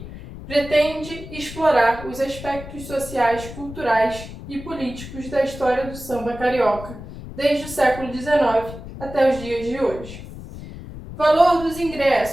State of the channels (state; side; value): noise; left; rumble, 13 dB below the sound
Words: pretende explorar os aspectos sociais, culturais e políticos da história do samba carioca, desde o século XIX até os dias de hoje. Valor dos